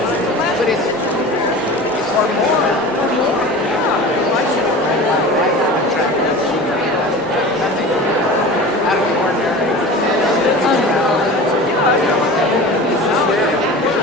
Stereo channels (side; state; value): both; normal; correlation 0.35